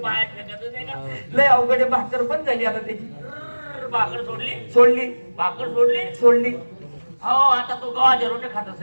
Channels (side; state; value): both; inverted; correlation -1.00